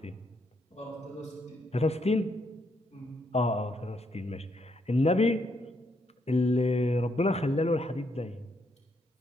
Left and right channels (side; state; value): both; normal; correlation 0.76